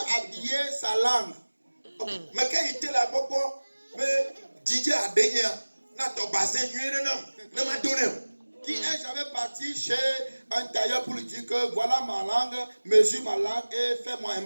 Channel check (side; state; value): both; inverted; correlation -1.00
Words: habillé sa langue? Mais quel était là pour mais Didier a dénié n'a ton bassin nuit non m'a donné. Qui est jamais parti chez un tailleur pour lui dire que voilà ma langue, mesure ma langue et fais-moi un